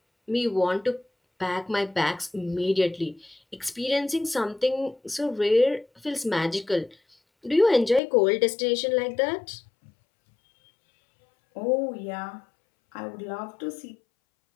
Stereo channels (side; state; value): right; drops out; at 8.0 s